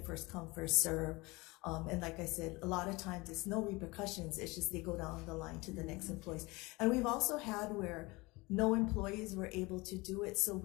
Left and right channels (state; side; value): quieter; right; 23.7 dB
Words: First come, first serve. And like I said, a lot of times it's no repercussions. It's just they go down the line to the next employees. And we've also had where no employees were able to do it. So